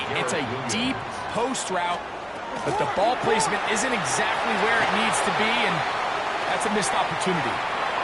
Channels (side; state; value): both; identical; correlation 1.00